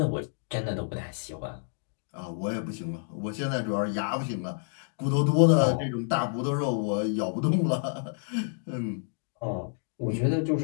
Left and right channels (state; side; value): silent; right; digital silence